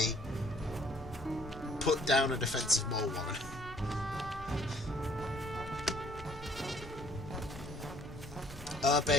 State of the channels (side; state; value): both; normal; correlation 0.60